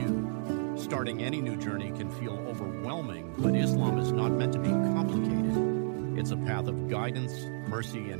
Starting any new journey can feel overwhelming, but Islam is not meant to be complicated. It's a path of guidance, mercy,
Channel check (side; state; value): left; silent; digital silence